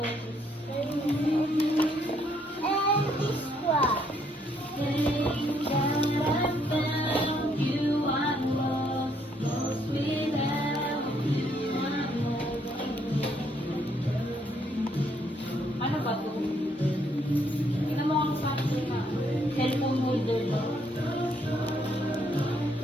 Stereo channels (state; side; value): normal; both; correlation 0.70